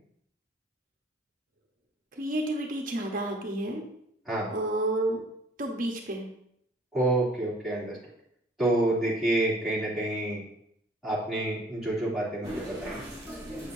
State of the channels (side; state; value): both; normal; correlation 0.55